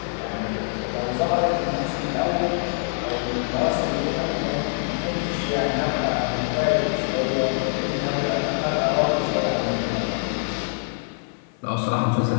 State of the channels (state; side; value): silent; right; 55 dB below the other